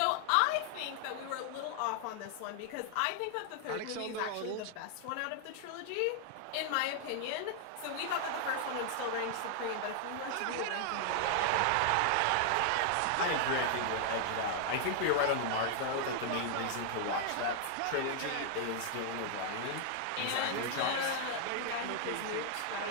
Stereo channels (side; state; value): both; different; correlation 0.00